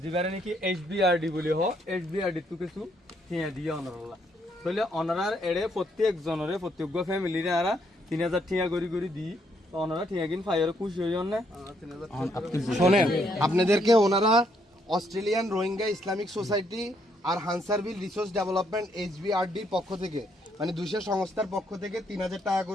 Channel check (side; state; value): both; normal; correlation 0.72